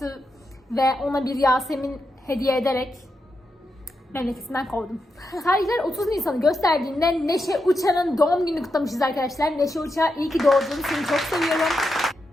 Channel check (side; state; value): both; normal; correlation 0.85